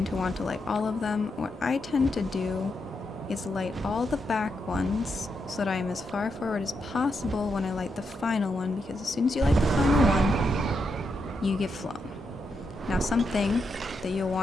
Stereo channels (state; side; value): normal; both; correlation 0.83